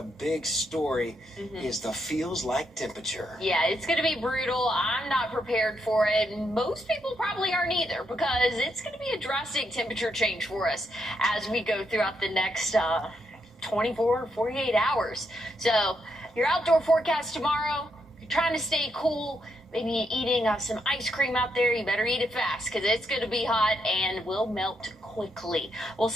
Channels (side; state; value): both; normal; correlation 0.79